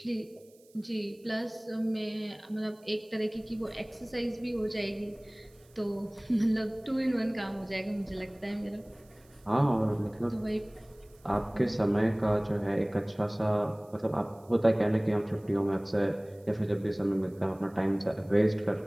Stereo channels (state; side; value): noise; right; hiss, 30 dB below the sound